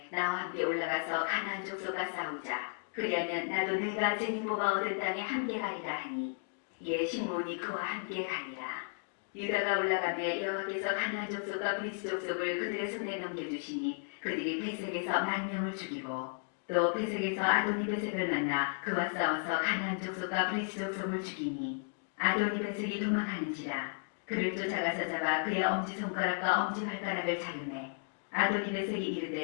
나와 함께 올라가서 가나안 족속과 싸우자. 그리하면 나도 내가 제비 뽑아 얻은 땅에 함께 가리라 하니 이에 시므온이 그와 함께 가리라. 유다가 올라가매 여호와께서 가나안 족속과 브리스 족속을 그들의 손에 넘겨주시니 그들이 베색에서 10,000명을 죽이고 또 베색에서 아도니 베색을 만나 그와 싸워서 가나안 족속과 브리스 족속을 죽이니 아도니 베색이 도망하는지라. 그를 쫓아가서 잡아 그의 엄지손가락과 엄지발가락을 자르매 아도니 베색이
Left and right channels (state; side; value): silent; right; 55 dB below the other